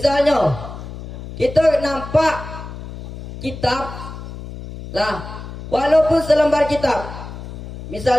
kita nampak kitab, lah, walaupun selembar kitab.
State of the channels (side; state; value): left; noise; hum, 11 dB below the sound